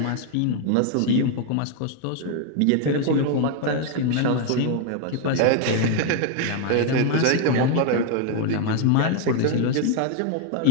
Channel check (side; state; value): both; different; correlation 0.00